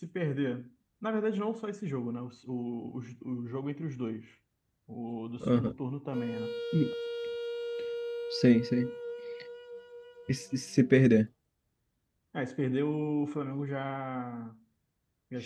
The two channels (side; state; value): both; identical; correlation 1.00